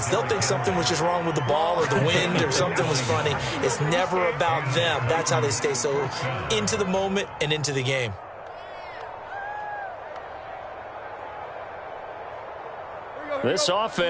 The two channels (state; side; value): identical; both; correlation 1.00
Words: They'll think something was just wrong with the ball or the wind or something was funny. It's never about them. That's how they stay so into the moment and into the game. This